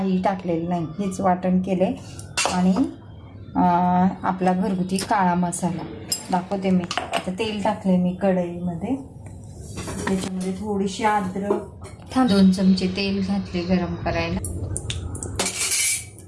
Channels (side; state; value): both; identical; correlation 1.00